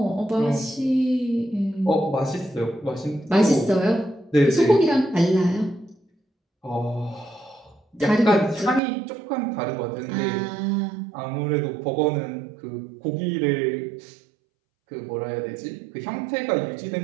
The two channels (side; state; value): left; drops out; at 8.8 s